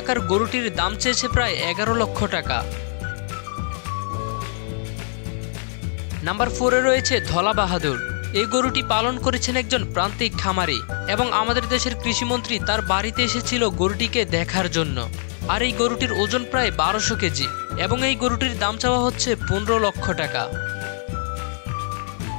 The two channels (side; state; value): right; silent; 56 dB below the other